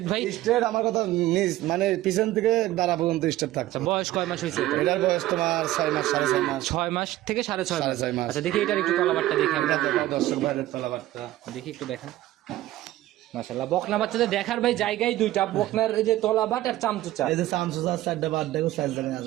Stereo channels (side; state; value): left; quieter; 15.6 dB